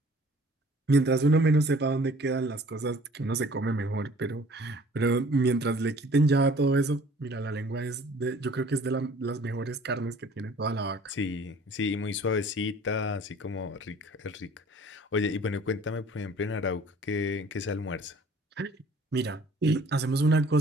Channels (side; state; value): both; normal; correlation 0.52